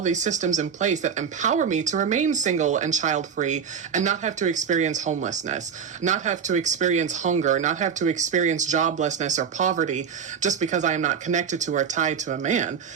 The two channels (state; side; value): quieter; left; 7.0 dB